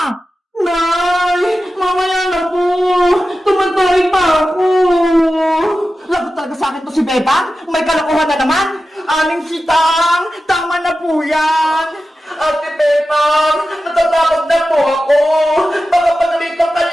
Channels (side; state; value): both; normal; correlation 0.93